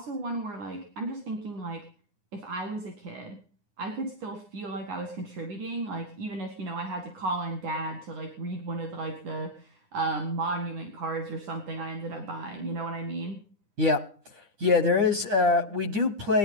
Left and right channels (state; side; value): late; left; 9.8 ms